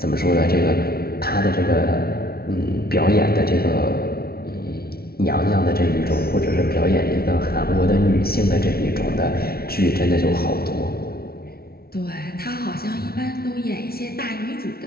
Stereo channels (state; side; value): late; right; 0.44 ms